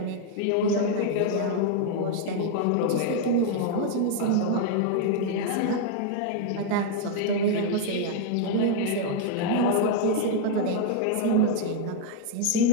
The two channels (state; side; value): different; both; correlation 0.00